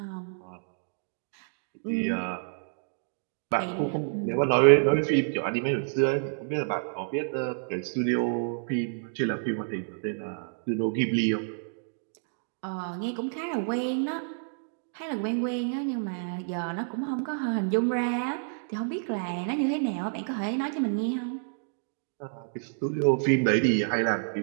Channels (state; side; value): silent; left; digital silence